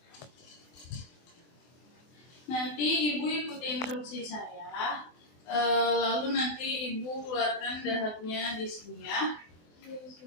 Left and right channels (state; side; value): late; right; 24 ms